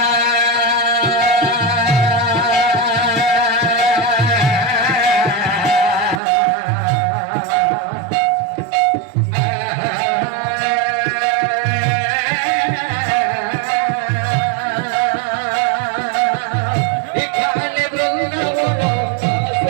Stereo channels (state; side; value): drops out; left; at 6.2 s